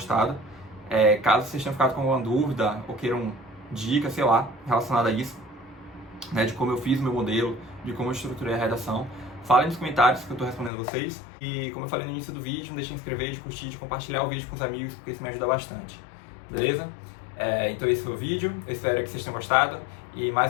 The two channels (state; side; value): drops out; right; at 10.7 s